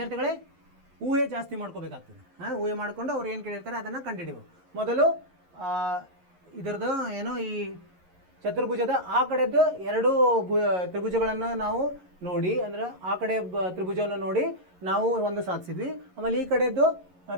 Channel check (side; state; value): left; late; 11 ms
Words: ಊಹೆ ಜಾಸ್ತಿ ಮಾಡ್ಕೋಬೇಕಾಗ್ತದೆ. ಊಹೆ ಮಾಡಿಕೊಂಡು ಅವ್ರು ಏನು ಕೇಳಿರ್ತಾರೆ ಅದನ್ನು ಕಂಡುಹಿಡಿಯಬೇಕು. ಮೊದಲು ಇದರದ್ದು ಏನೋ ಈ ಚತುರ್ಭುಜದ ಆ ಕಡೆದ್ದು ಎರಡು ತ್ರಿಭುಜಗಳನ್ನು ನಾವು ನೋಡಿ, ಅಂದರೆ ಆ ಕಡೆ ತ್ರಿಭುಜವನ್ನು ನೋಡಿ ನಾವು ಒಂದು ಸಾಧಿಸಿದ್ವಿ. ಆಮೇಲೆ ಈ ಕಡೆದ್ದು